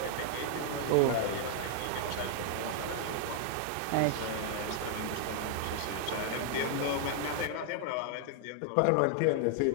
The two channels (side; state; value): both; different; correlation 0.00